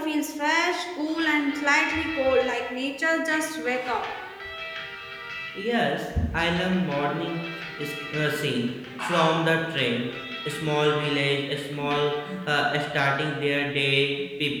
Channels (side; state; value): both; identical; correlation 1.00